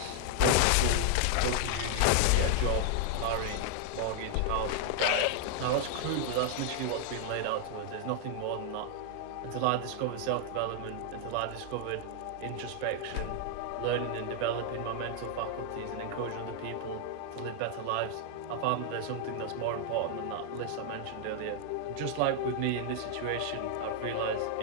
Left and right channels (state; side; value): different; both; correlation 0.00